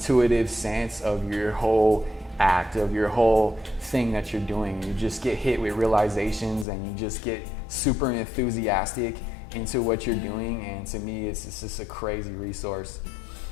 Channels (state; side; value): drops out; right; at 6.7 s